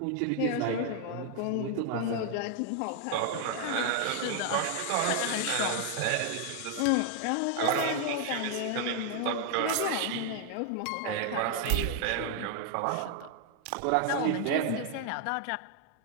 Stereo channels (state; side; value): different; both; correlation 0.00